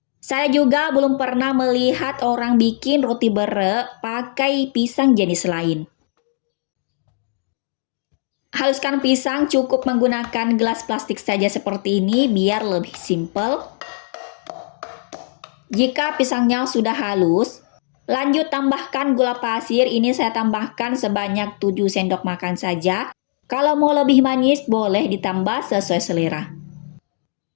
Saya juga belum pernah melihat orang bikin roti bere pakai pisang jenis lain. Haluskan pisang cukup menggunakan gelas plastik saja seperti ini biar lebih simple. Jika pisangnya sudah halus, lanjut tambahkan gula pasir. Ini saya tambahkan sebanyak 7 sendok makan saja. Kalau mau lebih manis boleh ditambah sesuai selera.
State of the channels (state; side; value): silent; right; digital silence